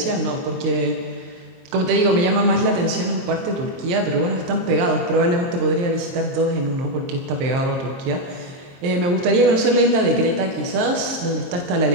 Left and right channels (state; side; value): late; left; 23 ms